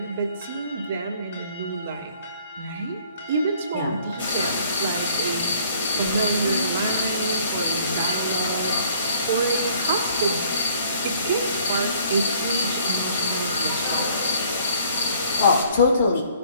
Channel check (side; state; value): both; inverted; correlation -0.58